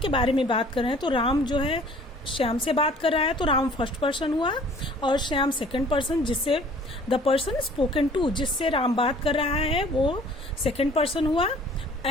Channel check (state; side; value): normal; both; correlation 0.52